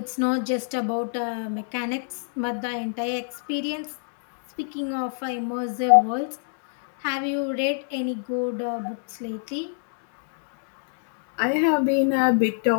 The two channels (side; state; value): right; silent; digital silence